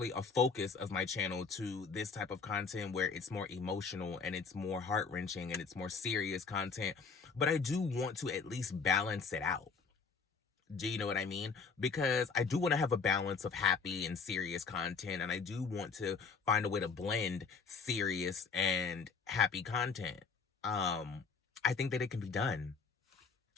a focus of my channel to this type of content where it's more emotional and it's more heart-wrenching and it's more serious content, but I do want to at least balance it out. Do you know what I mean? Because I do want to have a balance of happy and serious content, and I do want to find a way to blend serious and happy content. I think that it can be done.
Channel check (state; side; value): quieter; right; 5.1 dB